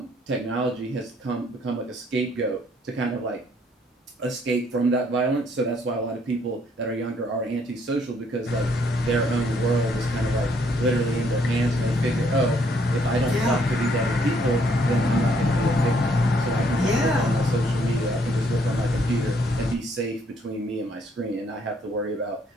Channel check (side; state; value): both; normal; correlation 0.67